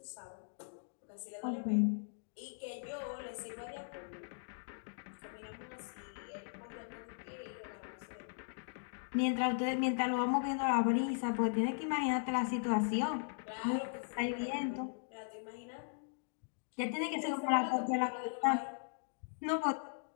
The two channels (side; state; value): right; silent; digital silence